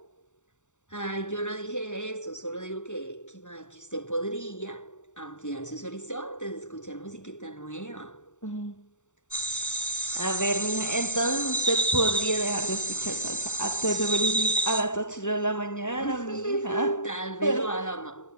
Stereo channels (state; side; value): late; right; 0.85 ms